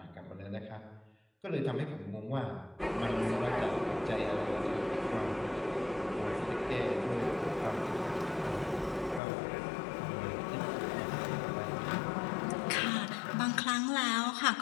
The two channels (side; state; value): right; drops out; at 9.2 s